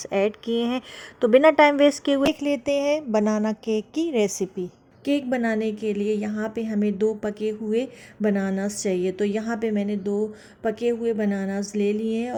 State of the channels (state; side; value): identical; both; correlation 1.00